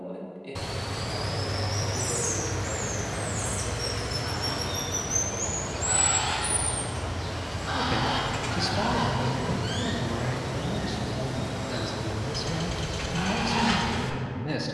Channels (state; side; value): identical; both; correlation 1.00